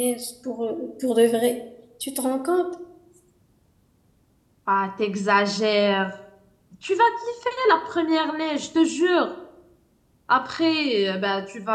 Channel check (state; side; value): identical; both; correlation 1.00